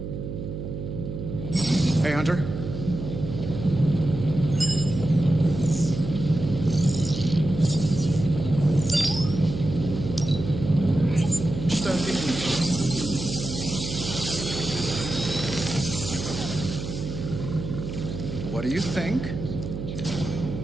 Hey, Hunter. What do you think?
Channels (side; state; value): right; noise; hum, 6 dB below the sound